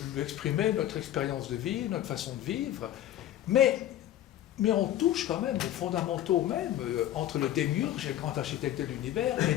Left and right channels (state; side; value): quieter; right; 12.5 dB